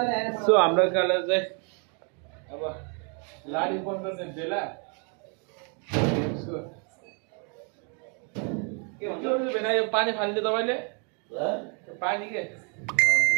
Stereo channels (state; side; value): quieter; left; 37.9 dB